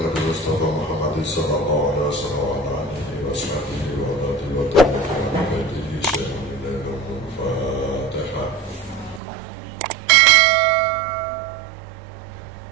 Mustafa Muhammad sallallahu alaihi wasallam wa alihi washabihi wa alihi wa tabi'in Fatihah.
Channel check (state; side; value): drops out; left; at 9.2 s